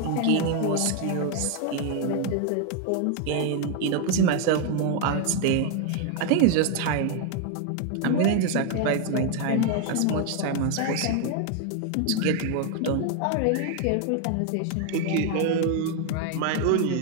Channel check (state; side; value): different; both; correlation 0.00